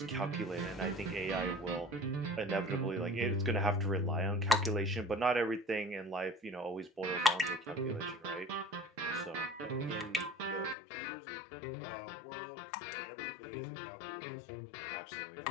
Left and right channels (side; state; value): right; drops out; at 10.8 s